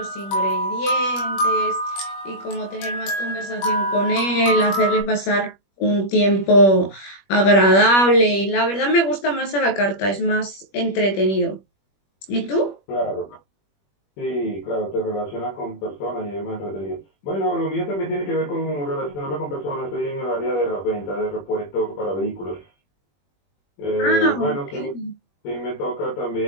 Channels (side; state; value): right; late; 21 ms